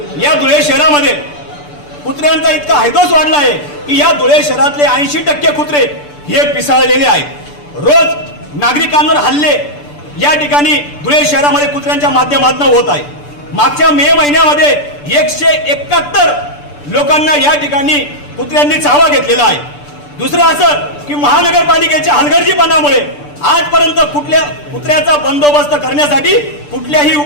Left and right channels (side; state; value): right; late; 6.8 ms